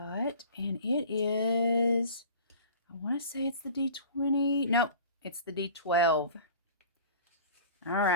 and it is, I want to say it's the D20. Nope, it's the D12. All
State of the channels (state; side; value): inverted; both; correlation -0.42